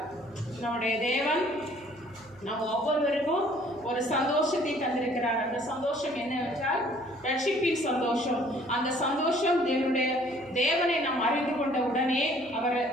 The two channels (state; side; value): noise; right; hum, 27 dB below the sound